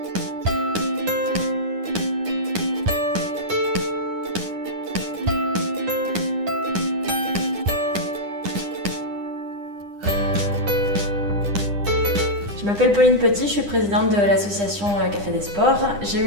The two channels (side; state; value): left; late; 9.9 ms